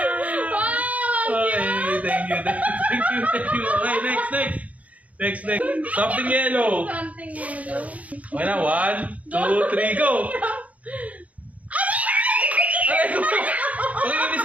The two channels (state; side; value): late; left; 0.069 ms